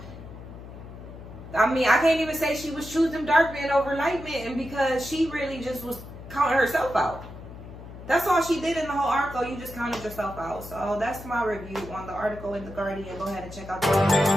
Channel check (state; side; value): noise; left; hum, 14 dB below the sound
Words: I mean, I can't even say she was choosing dark men over light men because she really just was counting herself out. That's all she did in the whole article. You just counted yourself out. So that's my review on the article in The Guardian. Go ahead and check out